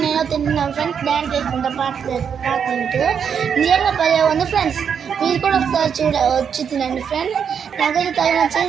నేను తింటున్నాం ఫ్రెండ్స్. డ్యాన్స్ వేసుకుంటా పాడుకుంటూ. నిజంగా భలే ఉంది ఫ్రెండ్స్. మీరు కూడా ఒకసారి వచ్చి తినండి ఫ్రెండ్స్. నాకైతే తగిన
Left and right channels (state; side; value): quieter; left; 7.3 dB